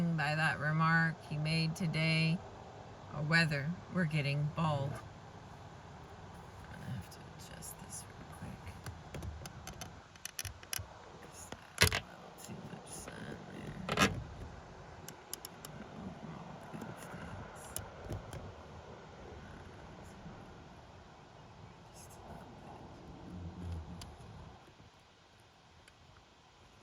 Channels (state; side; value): identical; both; correlation 1.00